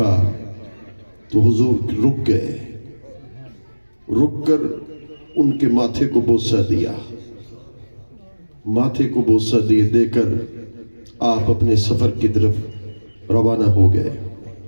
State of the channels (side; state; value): both; inverted; correlation -1.00